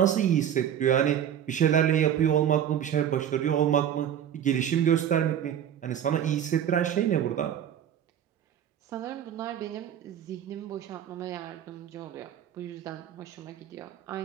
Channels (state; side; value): quieter; left; 9.7 dB